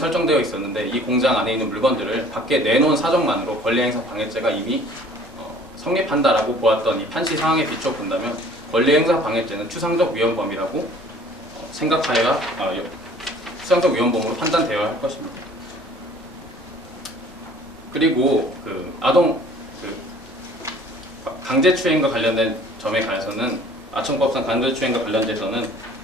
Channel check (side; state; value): both; normal; correlation 0.52